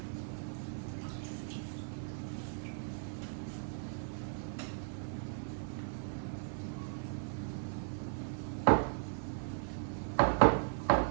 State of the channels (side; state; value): left; silent; digital silence